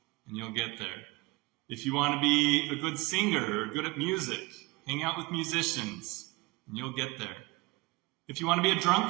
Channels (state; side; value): quieter; left; 23.1 dB